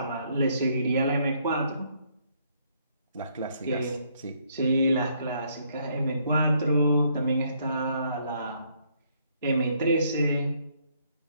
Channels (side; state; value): both; inverted; correlation -0.69